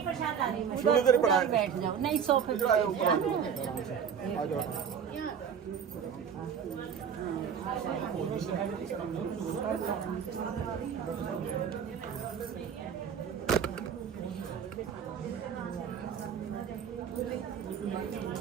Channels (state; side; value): quieter; left; 7.6 dB